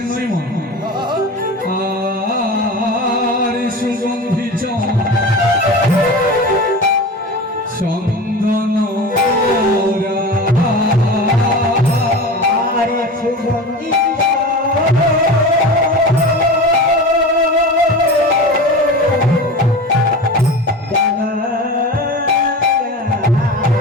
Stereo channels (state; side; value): normal; both; correlation 0.31